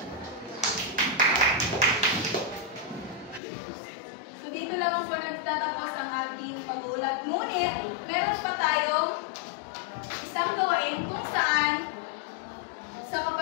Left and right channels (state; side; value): drops out; right; at 3.4 s